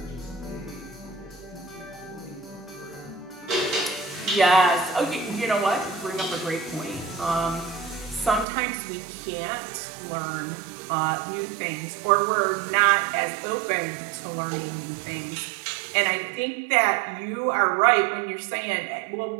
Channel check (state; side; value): drops out; left; at 8.5 s